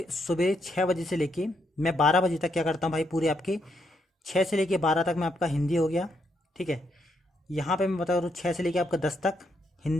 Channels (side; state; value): both; normal; correlation 0.77